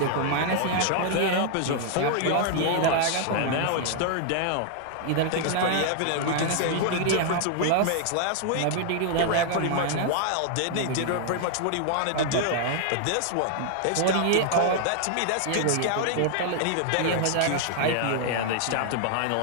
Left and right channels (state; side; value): different; both; correlation 0.00